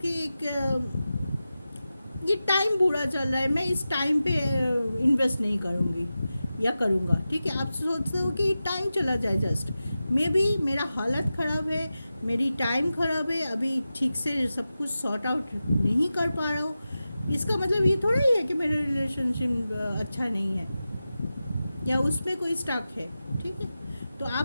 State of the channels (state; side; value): inverted; both; correlation -0.93